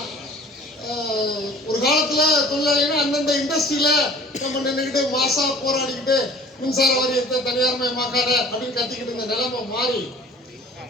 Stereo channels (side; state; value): both; normal; correlation 0.47